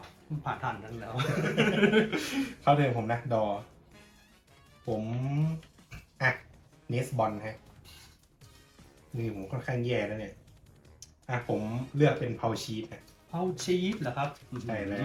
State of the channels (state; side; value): identical; both; correlation 1.00